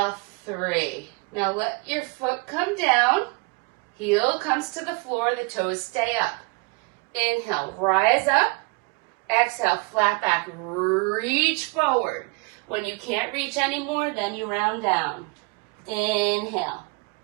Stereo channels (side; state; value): left; quieter; 29.4 dB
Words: 3. Now let your foot come down. Heel comes to the floor. The toes stay up. Inhale, rise up. Exhale, flat back. Reach forward. When you can't reach anymore, then you round down. Inhale.